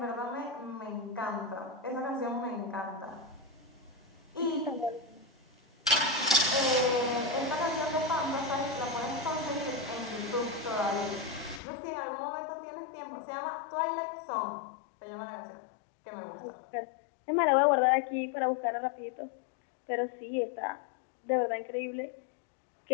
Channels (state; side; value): drops out; right; at 11.6 s